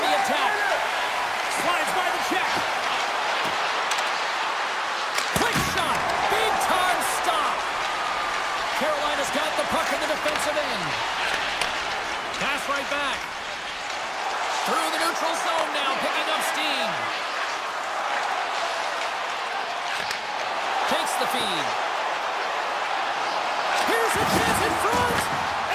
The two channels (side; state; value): both; identical; correlation 1.00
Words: the attack. Slides by the check. Quick shot. Big time stop. Carolina's got the puck in the defensive end. Pass right back. Through the neutral zone now, picking up steam. Takes the feed. Here's a chance in front,